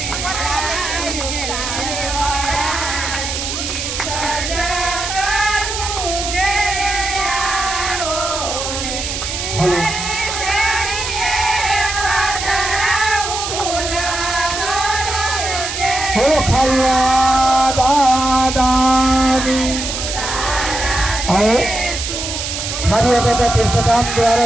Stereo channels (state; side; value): noise; right; hiss, 4 dB below the sound